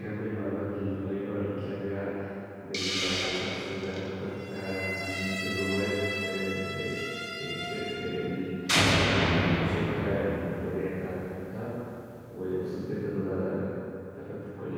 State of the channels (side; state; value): both; identical; correlation 1.00